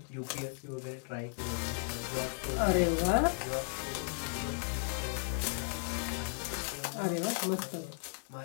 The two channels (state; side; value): silent; right; digital silence